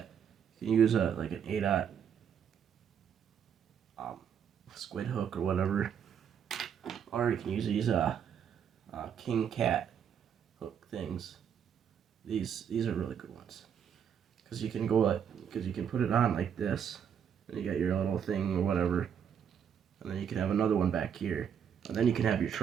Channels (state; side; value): quieter; left; 8.1 dB